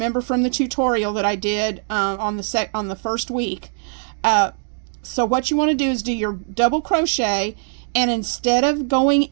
from the tutorial that I did on the first week. So what you want to do is do your double crochet, and instead of going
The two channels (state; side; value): silent; left; digital silence